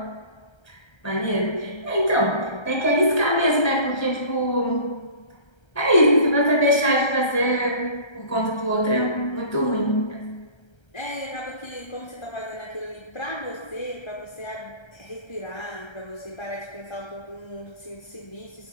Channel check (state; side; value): late; right; 1.3 ms